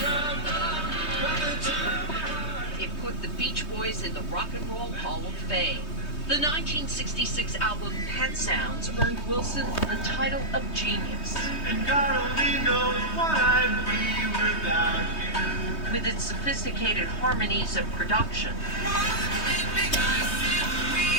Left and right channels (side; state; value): right; late; 3.2 ms